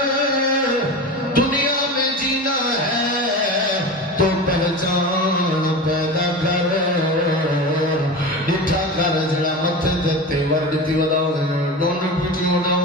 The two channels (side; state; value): both; normal; correlation 0.28